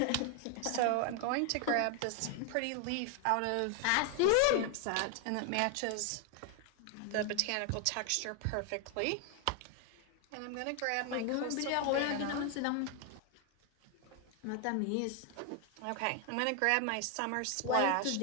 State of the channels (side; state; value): both; different; correlation 0.00